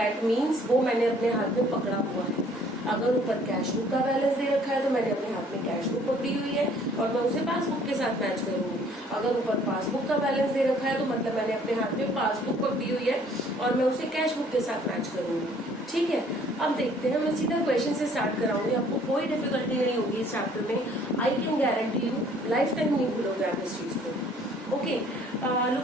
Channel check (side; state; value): both; normal; correlation 0.58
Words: मीन्स वो मैंने अपने हाथ में पकड़ा हुआ है। अगर ऊपर कैश बुक का बैलेंस दे रखा है तो मैंने अपने हाथ में कैश बुक पकड़ी हुई है और मैं उसे पासबुक के साथ मैच करूंगी। अगर ऊपर पासबुक का बैलेंस दे रखा है तो मतलब मैंने अपने हाथ में पासबुक पकड़ी हुई है और मैं उसे कैश बुक के साथ मैच करूंगी। ठीक है, अब देखते हैं, मैं सीधा क्वेश्चन से स्टार्ट कराऊंगी, आपको कोई डिफिकल्टी नहीं होगी इस चैप्टर में। I can guarantee you life time नहीं भूलोगे आप इस चीज को। Okay,